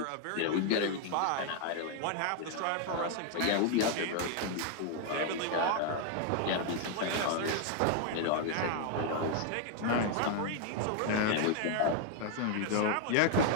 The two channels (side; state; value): both; different; correlation 0.00